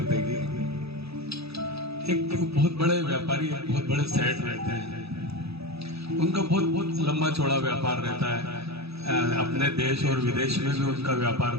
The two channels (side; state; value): left; late; 0.78 ms